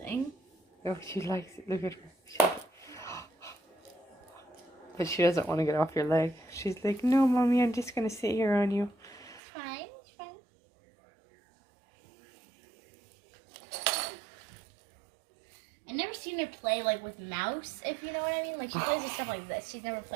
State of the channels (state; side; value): drops out; left; at 9.4 s